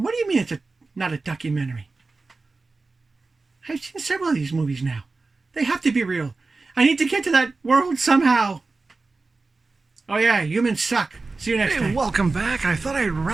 do you mean it's not a documentary? I've seen several of these movies now. They have to be real. I need to get to that world somehow. Oh yeah, humans suck. See you next time. Welcome back. I thought I'd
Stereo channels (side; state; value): left; quieter; 3.7 dB